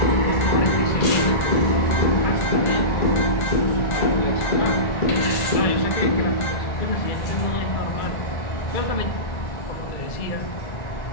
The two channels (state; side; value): late; right; 2.3 ms